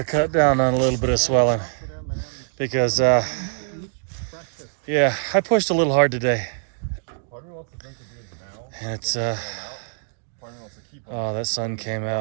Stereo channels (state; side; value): silent; left; digital silence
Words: cut down on a little bit of swelling, because yeah, I pushed a little hard today, and it's oh, that sun came